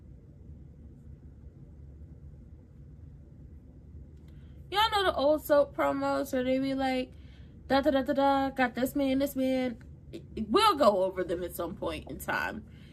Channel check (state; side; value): identical; both; correlation 1.00